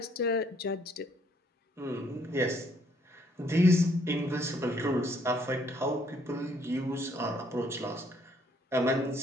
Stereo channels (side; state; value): both; normal; correlation 0.66